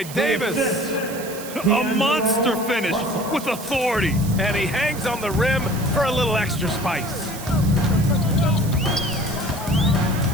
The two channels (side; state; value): right; noise; hiss, 13 dB below the sound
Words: Davis. A monster finish with authority. And he hangs on the rim for a little extra spice.